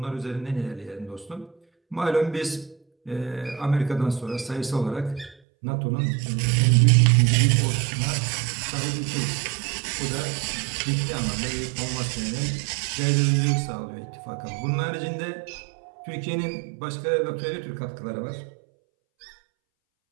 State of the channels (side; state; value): left; drops out; at 5.4 s